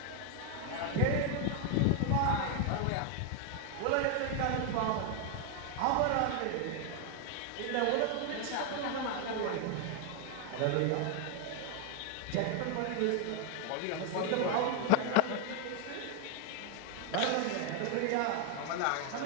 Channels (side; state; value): both; different; correlation 0.00